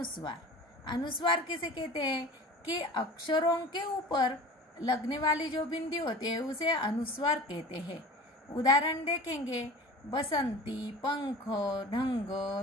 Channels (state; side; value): normal; both; correlation 0.37